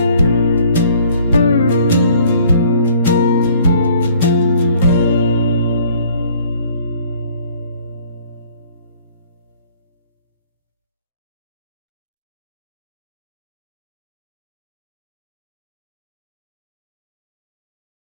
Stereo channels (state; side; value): inverted; both; correlation -0.57